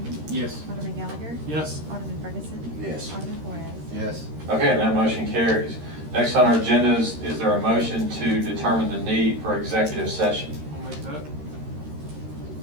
Yes. Alderman Gallagher. Yes. Alderman Ferguson. Yes. Alderman Flores. Yes. Okay, and that motion carries. Next on our agenda is there a motion to determine the need for executive session? I'll make that.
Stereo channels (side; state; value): left; late; 13 ms